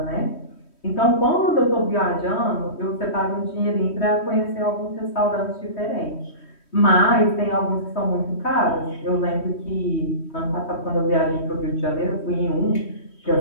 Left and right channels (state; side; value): late; right; 3.1 ms